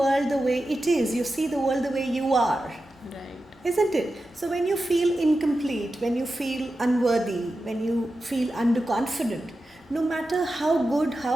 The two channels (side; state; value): both; normal; correlation 0.92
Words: the way it is. You see the world the way you are. Right. Isn't it? So when you feel incomplete, when you feel unworthy, when you feel underconfident, no matter how good,